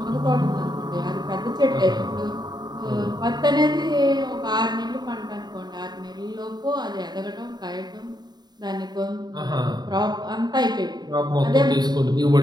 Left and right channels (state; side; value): late; left; 0.20 ms